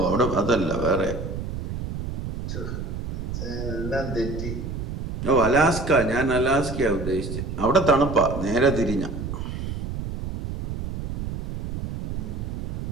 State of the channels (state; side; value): noise; right; rumble, 5 dB below the sound